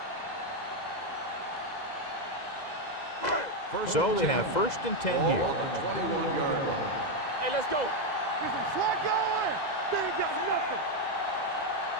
So they have 1st and 10 here. Ball on the 21-yard line. Hey, let's go. Get some slack going. They ain't got nothing.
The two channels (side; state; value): right; late; 2.0 ms